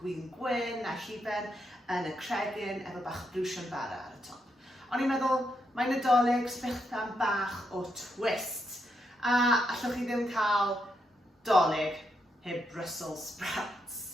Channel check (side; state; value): both; normal; correlation 0.81